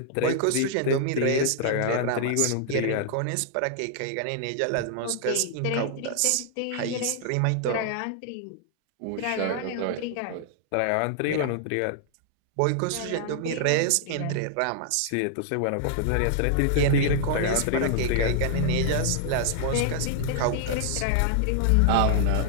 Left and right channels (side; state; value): both; different; correlation 0.00